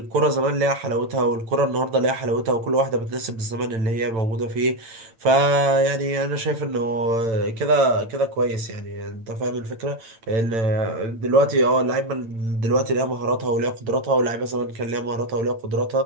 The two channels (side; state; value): left; late; 8.9 ms